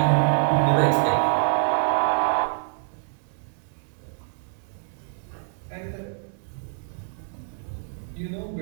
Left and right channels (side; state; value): left; silent; 61 dB below the other